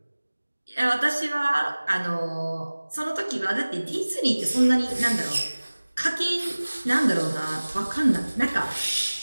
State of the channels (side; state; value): both; inverted; correlation -1.00